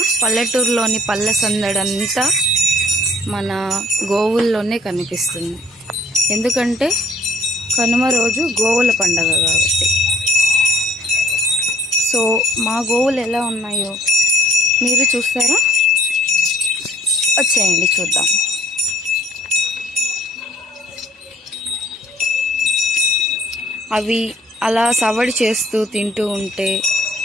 పల్లెటూరులోని పల్లె సందడంతా మన గోవుల్లోనే కనిపిస్తుంది. ఎందుకంటే కనుమ రోజు గోవుల పండగ కాబట్టి. సో మా గోవులు ఎలా ఉన్నాయో మీరు చూస్తారా? వచ్చేయండి చూద్దాం. అవి అలా సవడి చేస్తూ తింటూ ఉంటే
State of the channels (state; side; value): normal; both; correlation 0.56